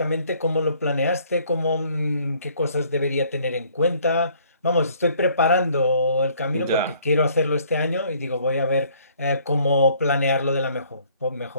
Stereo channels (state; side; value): inverted; both; correlation -0.61